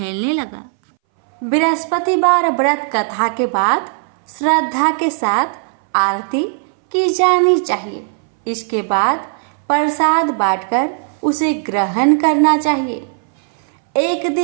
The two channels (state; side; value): silent; left; 64 dB below the other